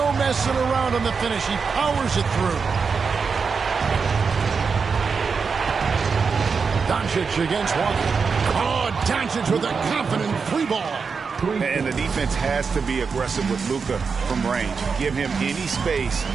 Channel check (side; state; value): left; quieter; 5.4 dB